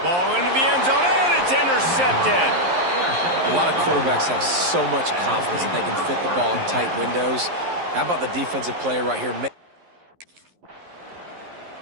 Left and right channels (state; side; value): late; left; 11 ms